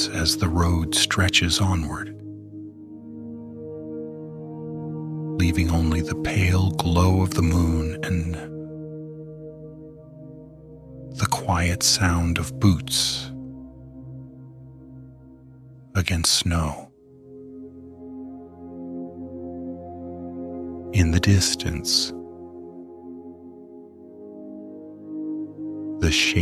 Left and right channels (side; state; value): both; identical; correlation 1.00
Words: as the road stretches onward, leaving only the pale glow of the moon and the quiet sound of boots against snow. In the distance, the